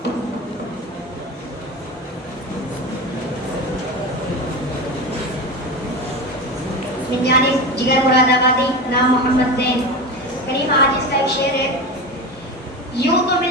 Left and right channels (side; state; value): both; normal; correlation 0.24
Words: من جانب جگر مراد آبادی، نام محمد زین۔ کریم عاجز کا ایک شعر ہے، یوں تو